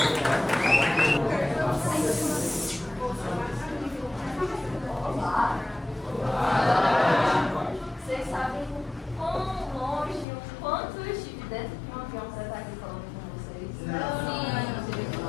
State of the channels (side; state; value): right; drops out; at 10.2 s